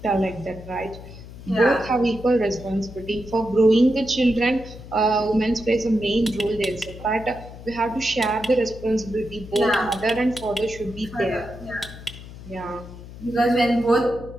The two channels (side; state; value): left; noise; hum, 15 dB below the sound